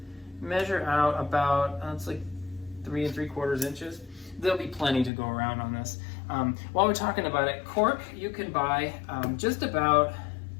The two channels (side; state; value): right; drops out; at 5.1 s